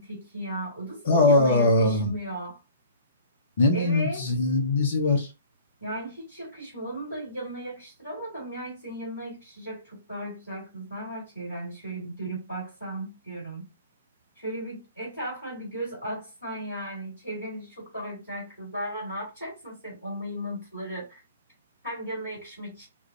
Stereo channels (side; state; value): both; inverted; correlation -0.45